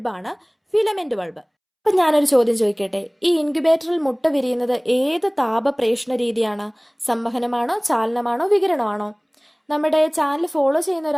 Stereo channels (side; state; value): both; identical; correlation 1.00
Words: ബൾബ്. അപ്പം ഞാനൊരു ചോദ്യം ചോദിക്കട്ടെ. ഈ ഇൻക്യുബേറ്ററിൽ മുട്ട വിരിയുന്നത് ഏത് താപപ്രേഷണ രീതിയാണ്? സംവഹനമാണോ, ചാലനമാണോ, വികിരണമാണോ? നമ്മുടെ ചാനൽ ഫോളോ ചെയ്യുന്ന